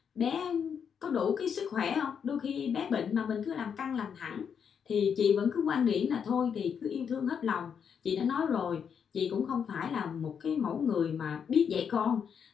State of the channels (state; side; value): quieter; right; 7.2 dB